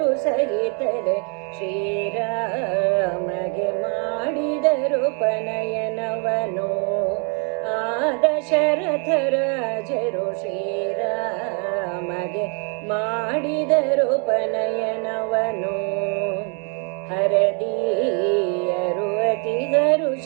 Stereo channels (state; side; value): quieter; left; 38.7 dB